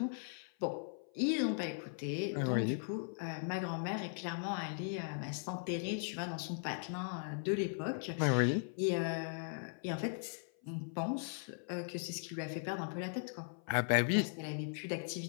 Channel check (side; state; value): right; silent; 52 dB below the other